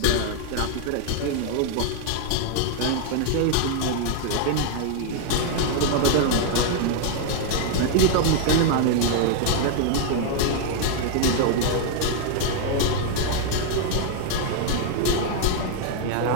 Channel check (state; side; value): different; both; correlation 0.00